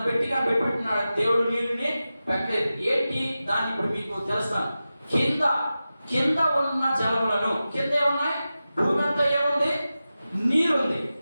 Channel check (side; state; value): both; inverted; correlation -0.94